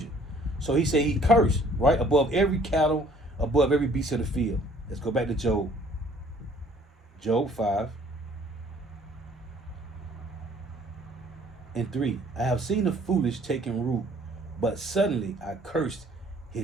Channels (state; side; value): normal; both; correlation 0.57